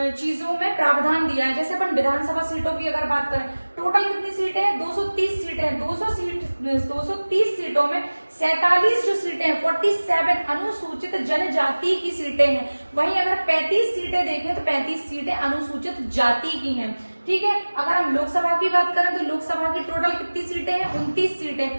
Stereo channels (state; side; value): inverted; both; correlation -1.00